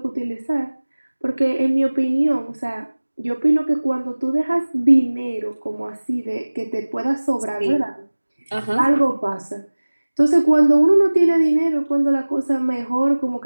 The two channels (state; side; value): inverted; both; correlation -1.00